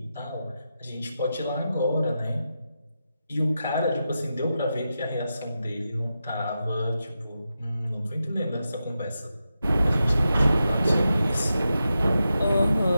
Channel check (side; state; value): both; inverted; correlation -0.89